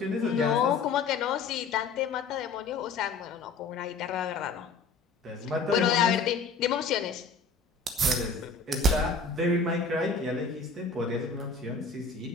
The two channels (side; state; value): right; quieter; 4.4 dB